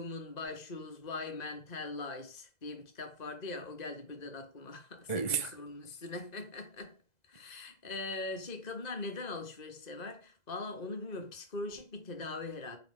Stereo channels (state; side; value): late; right; 2.0 ms